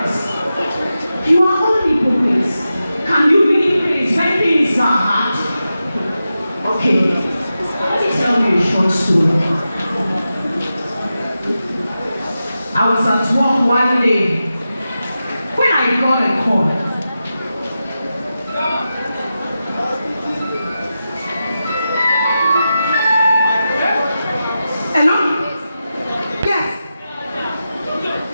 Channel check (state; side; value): inverted; both; correlation -0.91